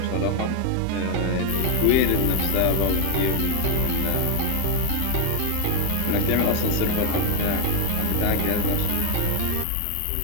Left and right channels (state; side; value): different; both; correlation 0.01